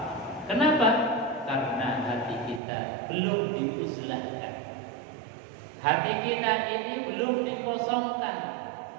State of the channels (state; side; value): drops out; left; at 2.6 s